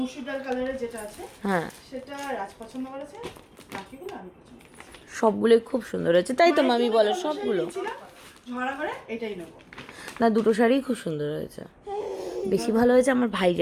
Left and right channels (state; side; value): identical; both; correlation 1.00